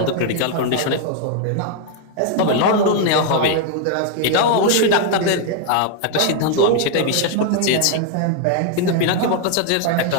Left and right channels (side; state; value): both; different; correlation 0.00